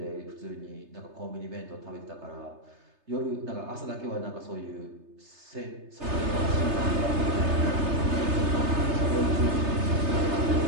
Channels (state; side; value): late; left; 3.3 ms